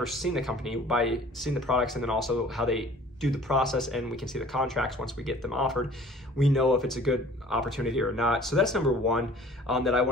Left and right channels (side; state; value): both; normal; correlation 0.49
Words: seen the company, by seeing the products and then also how they do the process, and we can see the contracts once we get them offered, we know if it's a good opportunity or not. So that's number 1 that I